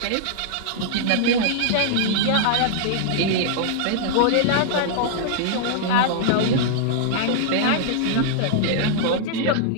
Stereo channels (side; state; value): both; different; correlation -0.01